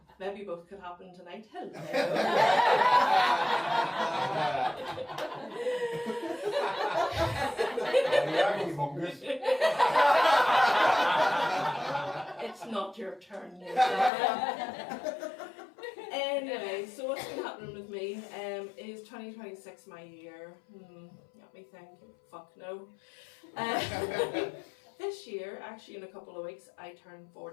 Maybe both could happen tonight. Hello. It's not your turn yet. Anyway, so what's been happening with me is 2026 my year? Let me think. Fuck no. This year, actually in a couple of weeks, I turn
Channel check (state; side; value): drops out; right; at 14.1 s